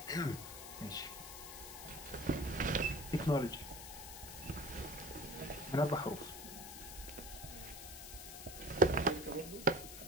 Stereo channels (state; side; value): noise; left; hiss, 10 dB below the sound